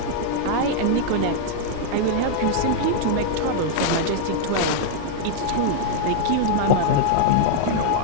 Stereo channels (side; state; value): both; different; correlation -0.01